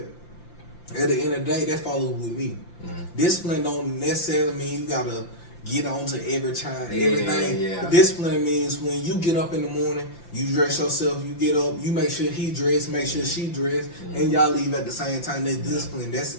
At the end of the day, that follows with me. Discipline don't necessarily mean you gotta get on to everything. Yeah. Discipline means when you get up in the morning, you dress yourself, you get up, you make sure he dressed, make sure she dressed, and y'all leave at the same time. That's discipline. That's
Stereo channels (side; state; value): right; late; 5.8 ms